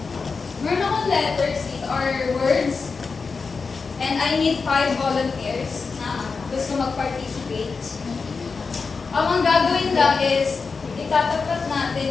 letters or words. And I need 5 volunteers na gusto mag-participate. Ang gagawin lang is, itatapat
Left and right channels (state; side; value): quieter; right; 4.7 dB